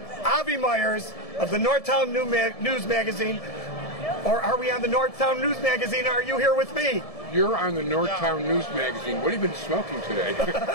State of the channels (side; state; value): right; late; 1.7 ms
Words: Avi Myers of the Northtown News Magazine. Or are we on the Northtown News Magazine? Are you here with me? You're on the Northtown News Magazine. What have you been smoking today?